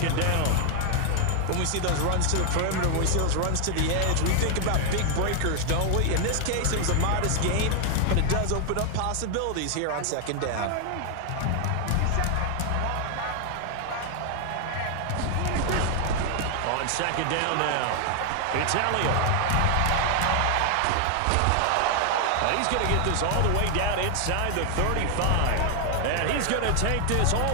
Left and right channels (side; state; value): both; different; correlation 0.00